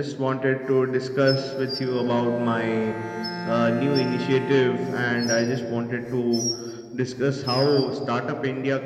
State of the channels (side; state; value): both; identical; correlation 1.00